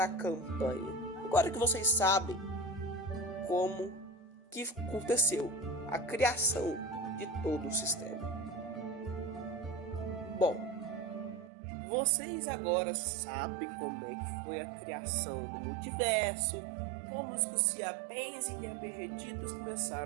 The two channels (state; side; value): drops out; left; at 11.5 s